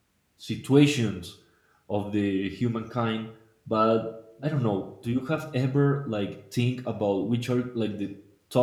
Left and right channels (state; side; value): identical; both; correlation 1.00